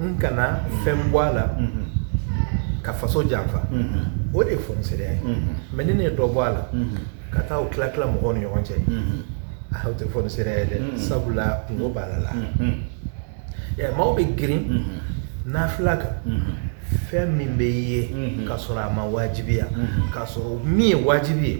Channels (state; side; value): silent; left; digital silence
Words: kana fɛn bɔ a la ka faso janfa o de ye fɔniseriya ye mais ni ne ye dɔ bɔ a la ka taa o tila tila mɔgɔw ni ɲɔgɔn cɛ o tɛ fɔniseriya ye dɛ sabula kungo b'a la maaw bɛ girin nafila kan fɛn min bɛ ye k'a sɔrɔ a ma wajibiya k'a sɔrɔ min ye wajibi ye